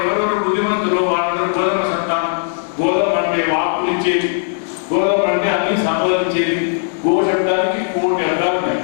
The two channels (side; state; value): right; silent; digital silence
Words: ఎవరెవరు బుద్ధిమంతులు, వాళ్ళందరూ గోధుమ సంతానం. గోధుమ అంటే వాక్కులు ఇచ్చేది, గోధుమ అంటే అన్ని సంపాదించేది. గో శబ్దానికి 1,000 అర్థాలు ఉన్నాయి.